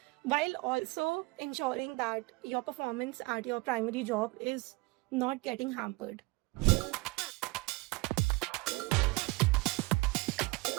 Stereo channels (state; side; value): quieter; left; 23.5 dB